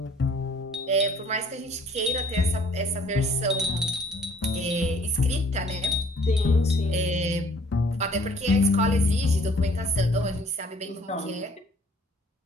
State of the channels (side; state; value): both; normal; correlation 0.57